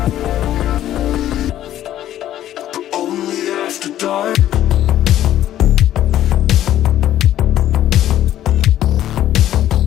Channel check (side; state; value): right; quieter; 12.4 dB